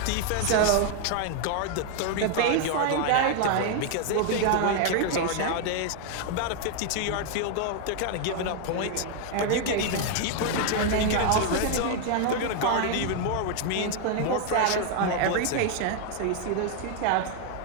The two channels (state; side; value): different; both; correlation 0.00